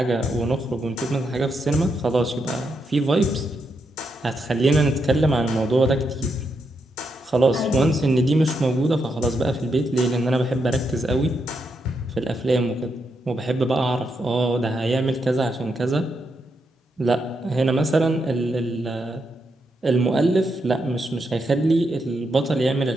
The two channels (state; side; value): normal; both; correlation 0.82